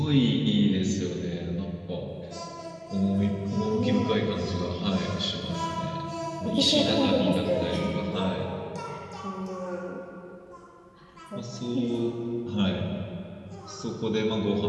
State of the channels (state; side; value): identical; both; correlation 1.00